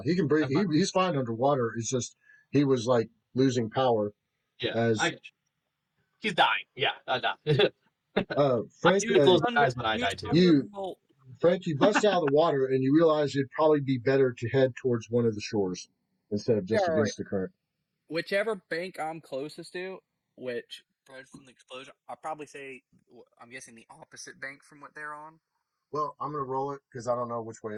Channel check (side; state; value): both; identical; correlation 1.00